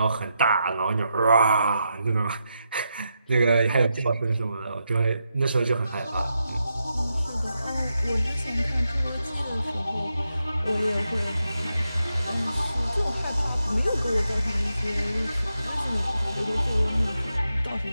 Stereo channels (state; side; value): inverted; both; correlation -0.84